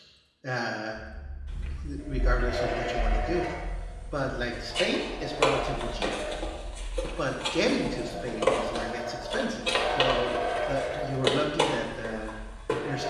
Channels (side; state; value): both; identical; correlation 1.00